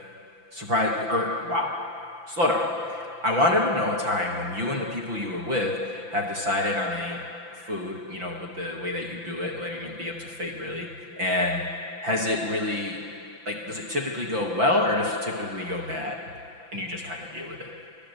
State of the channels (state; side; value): late; left; 5.9 ms